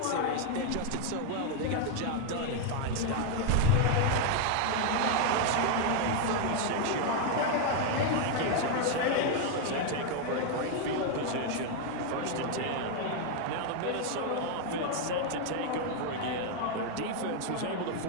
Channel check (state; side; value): different; both; correlation 0.01